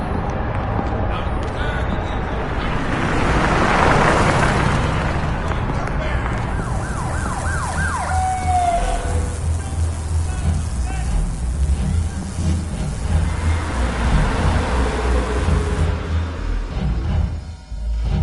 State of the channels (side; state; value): both; identical; correlation 1.00